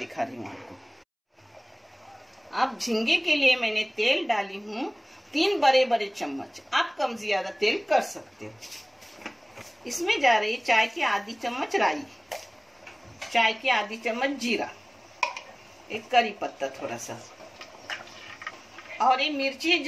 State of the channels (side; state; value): both; identical; correlation 1.00